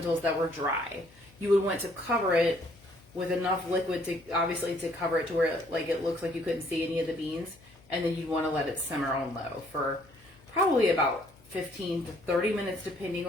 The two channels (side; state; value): left; noise; hum, 27 dB below the sound